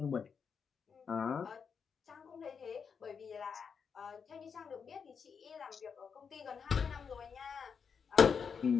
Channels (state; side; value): quieter; right; 6.3 dB